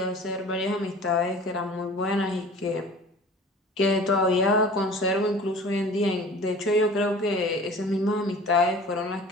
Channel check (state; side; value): normal; both; correlation 0.43